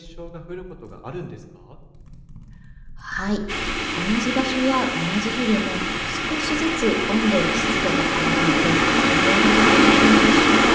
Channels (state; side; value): identical; both; correlation 1.00